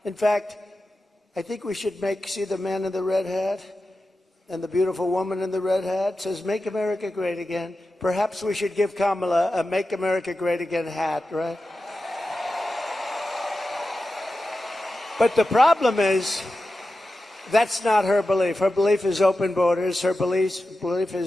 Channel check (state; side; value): normal; both; correlation 0.92